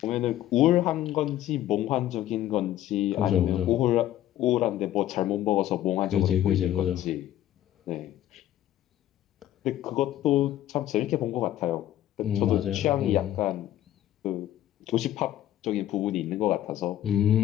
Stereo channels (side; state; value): right; quieter; 12.9 dB